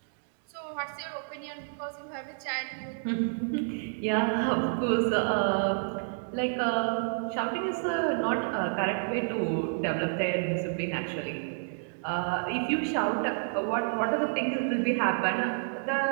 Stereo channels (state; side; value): silent; left; digital silence